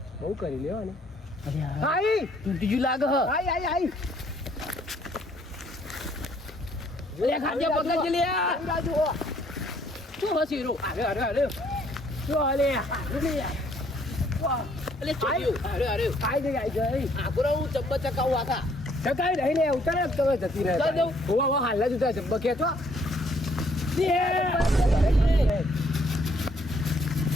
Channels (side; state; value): both; normal; correlation 0.65